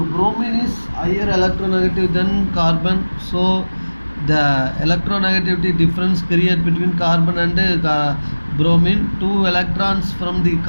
bromine is higher electronegative than carbon, so the electronegativity difference created between carbon and bromine. 2 electrons from the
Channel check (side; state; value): both; inverted; correlation -1.00